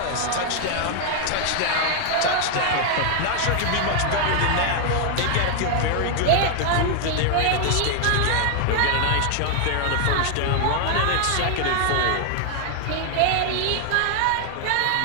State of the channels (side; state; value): both; different; correlation 0.00